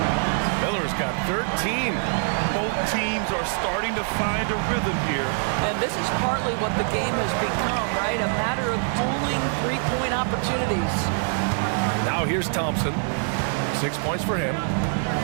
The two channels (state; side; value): silent; left; 58 dB below the other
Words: Miller's got 13. Both teams are starting to find a rhythm here. And this is partly what the game has become, right? A matter of dueling three-point opportunities. Now here's Thompson. 6 points for him.